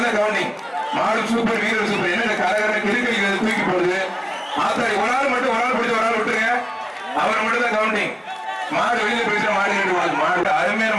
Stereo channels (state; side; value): identical; both; correlation 1.00